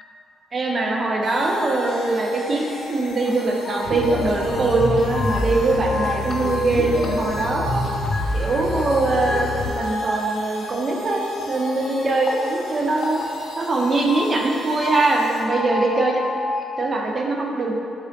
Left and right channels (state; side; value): normal; both; correlation 0.79